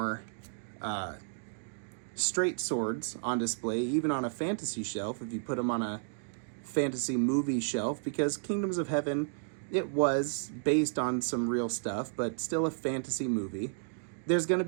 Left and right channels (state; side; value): silent; left; digital silence